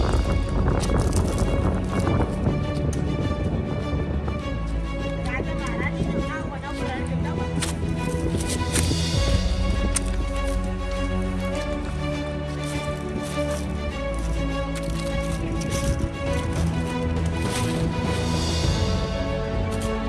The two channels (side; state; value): both; identical; correlation 1.00